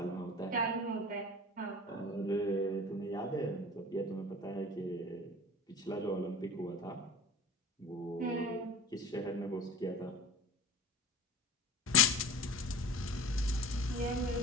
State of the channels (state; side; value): normal; both; correlation 0.37